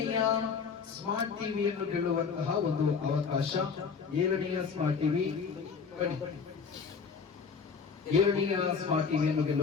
ಸ್ಮಾರ್ಟ್ ಟಿವಿಯನ್ನು ಗೆಲ್ಲುವಂತಹ ಒಂದು ಅವಕಾಶ. 7ನೆಯ ಸ್ಮಾರ್ಟ್ ಟಿವಿ 7ನೆಯ ಸ್ಮಾರ್ಟ್ ಟಿವಿಯನ್ನು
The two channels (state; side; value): quieter; right; 5.7 dB